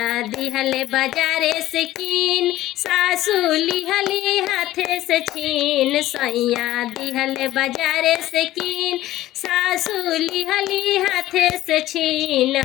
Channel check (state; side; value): quieter; right; 15.1 dB